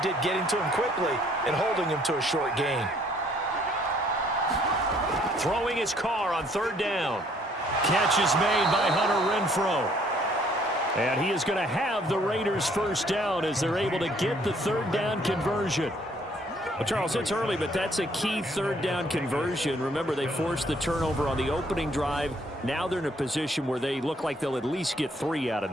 getting to him quickly and holding him to a short gain. Throwing his car on third down. Catch is made by Hunter Renfrow. And he is going to have the Raiders first down as they're able to get the third down conversion. Well, Charles, it's early, but that's a key third down conversion. Remember, they forced the turnover on the opening drive. Now they're in a position where they look like they'll at least get 3 out of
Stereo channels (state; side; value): normal; both; correlation 0.63